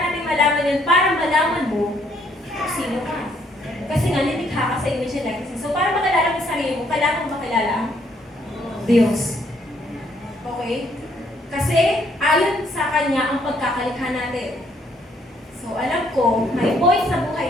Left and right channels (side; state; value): both; normal; correlation 0.68